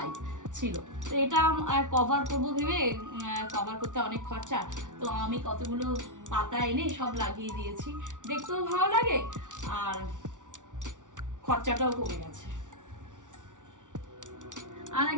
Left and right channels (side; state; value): left; late; 0.87 ms